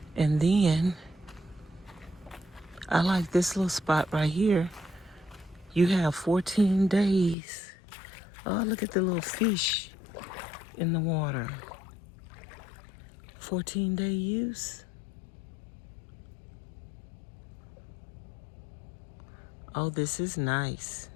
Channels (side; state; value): right; drops out; at 7.4 s